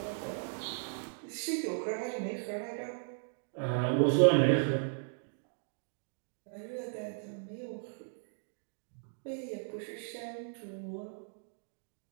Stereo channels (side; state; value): left; silent; digital silence